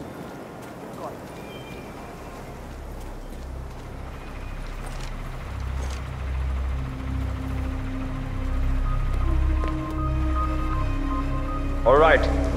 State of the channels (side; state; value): both; identical; correlation 1.00